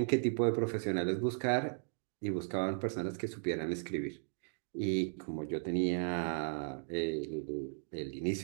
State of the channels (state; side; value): silent; left; digital silence